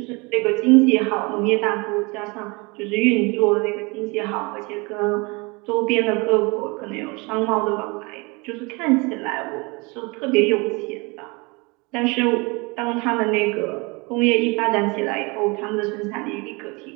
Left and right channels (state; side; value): quieter; left; 27.6 dB